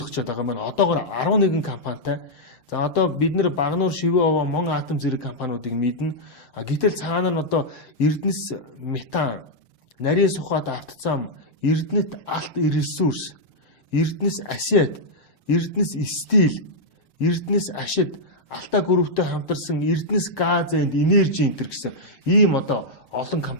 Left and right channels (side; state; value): right; late; 6.8 ms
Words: байгаа маань одоогоор 11 компанитай. За одоо бид нэр Багнуур Шивээ овоо Мон атом зэрэг компаниудыг мэднэ. Гэтэл цаана нь одоо Эрдэнэс метан, нарийн сухад автозам, Эрдэнэт алт ресурс, Эрдэнэс асет, Эрдэнэс стил, Эрдэнэс ашид Алта групптэй хамтарсан Эрдэнэс газ энд энержи энтер гэсэн ийм одоо олон